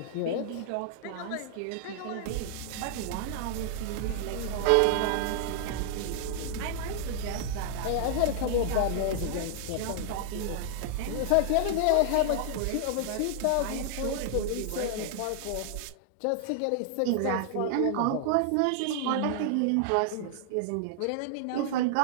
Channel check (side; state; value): both; different; correlation -0.01